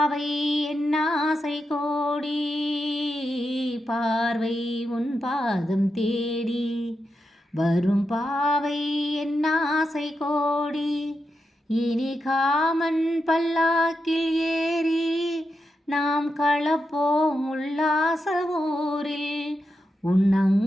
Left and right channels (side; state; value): both; normal; correlation 0.87